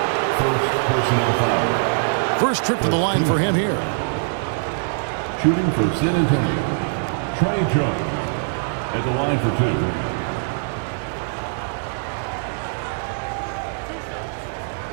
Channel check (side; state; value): left; silent; digital silence